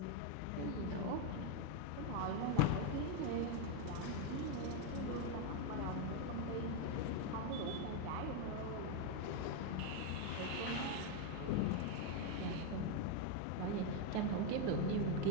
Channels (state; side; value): different; both; correlation 0.02